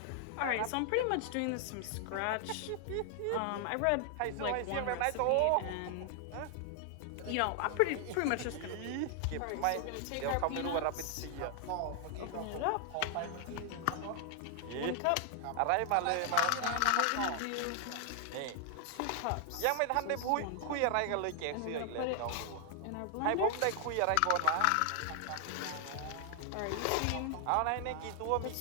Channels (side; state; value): both; different; correlation 0.00